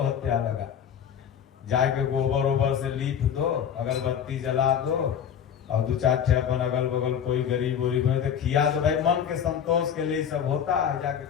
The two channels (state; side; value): quieter; right; 8.6 dB